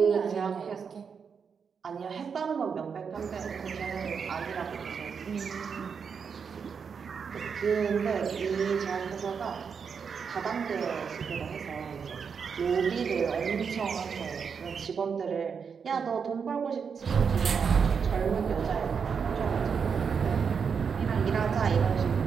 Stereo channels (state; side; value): quieter; left; 6.3 dB